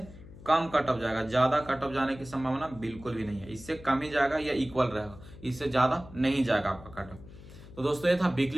कम कट ऑफ जाएगा। ज्यादा कट ऑफ जाने की संभावना बिल्कुल भी नहीं है, इससे कम ही जाएगा या इक्वल रहेगा, इससे ज्यादा नहीं जाएगा आपका कट ऑफ। तो दोस्तों ये था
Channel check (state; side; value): noise; left; hum, 18 dB below the sound